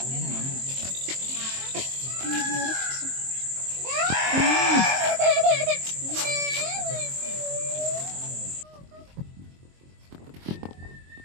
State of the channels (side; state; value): left; late; 23 ms